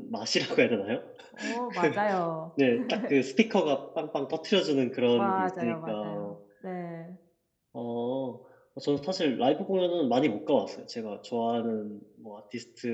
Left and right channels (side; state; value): both; identical; correlation 1.00